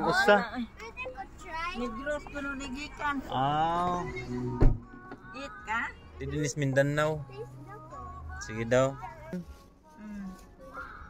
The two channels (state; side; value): identical; both; correlation 1.00